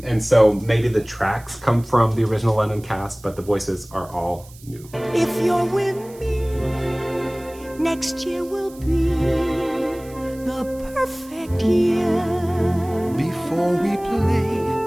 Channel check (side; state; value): right; noise; hiss, 23 dB below the sound